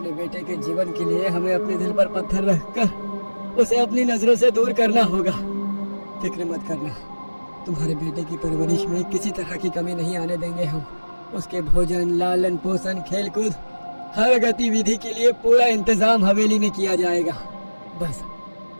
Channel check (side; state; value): both; inverted; correlation -1.00